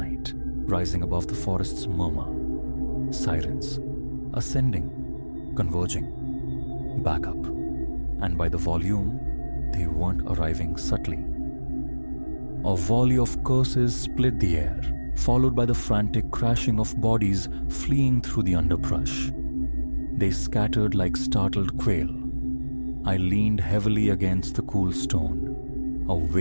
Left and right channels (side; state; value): both; inverted; correlation -1.00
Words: rising above the forest's murmur. Sirens, ascending, converging, back up, and by the volume, they weren't arriving subtly. A volley of curses split the air, followed by the frantic crashing of bodies fleeing through the underbrush. They scattered like startled quail. I leaned heavily against the cool stone. A